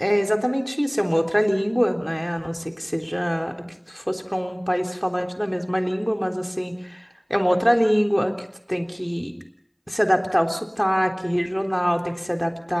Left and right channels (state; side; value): identical; both; correlation 1.00